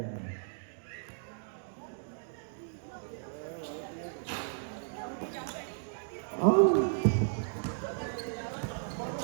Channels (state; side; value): silent; left; digital silence